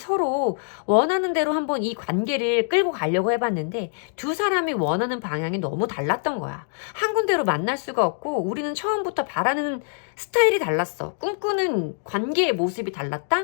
원하는 대로 한번 이 관계를 끌고 가려고 해봤는데 두 사람이 원하는 방향이 너무 달랐던 거야. 한 군데로 만날 수가 없고 우리는 처음부터 바라는 스타일이 달랐어. 꿈꾸는 관계의 모습이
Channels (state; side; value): silent; right; digital silence